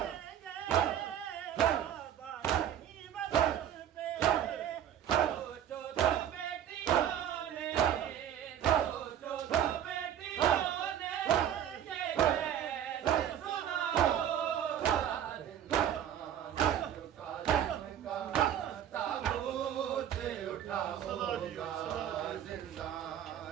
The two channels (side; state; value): left; quieter; 10.1 dB